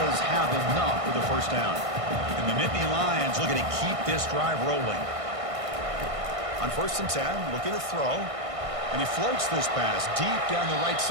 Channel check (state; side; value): late; left; 1.6 ms